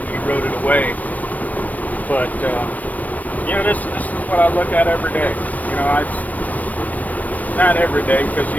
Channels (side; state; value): right; late; 0.076 ms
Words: eroded away. But you know, this is what I look at every day. You know, not every day, because